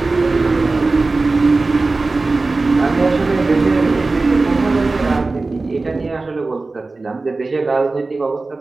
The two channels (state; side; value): quieter; left; 3.5 dB